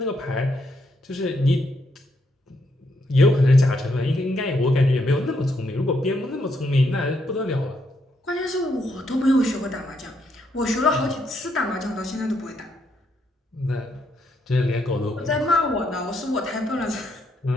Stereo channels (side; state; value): both; normal; correlation 0.76